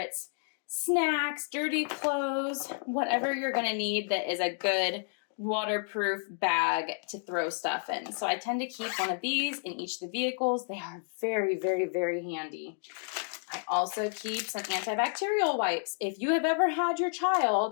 snacks, dirty clothes, whatever you're going to need that is a good waterproof bag to throw stuff in. So I tend to keep one of these in each of the vehicles. They are very, very, very handy. I also keep some antibacterial wipes. If you have ever had your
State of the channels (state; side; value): silent; right; 57 dB below the other